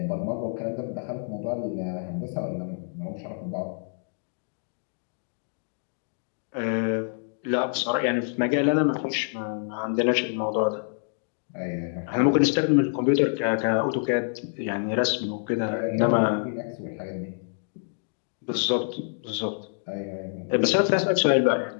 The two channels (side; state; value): right; silent; digital silence